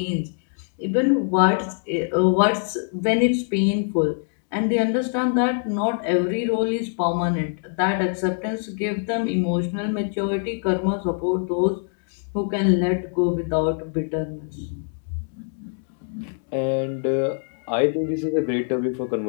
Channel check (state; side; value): silent; right; 63 dB below the other